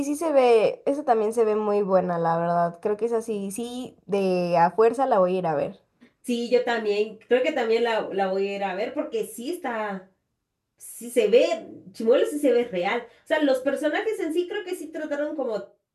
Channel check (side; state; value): both; identical; correlation 1.00